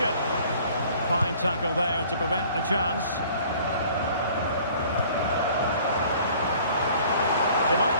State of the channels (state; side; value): inverted; both; correlation -0.53